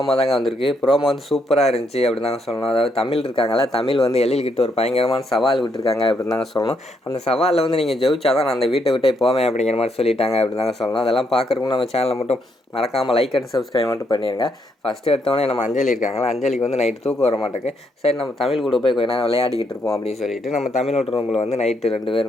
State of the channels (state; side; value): normal; both; correlation 0.76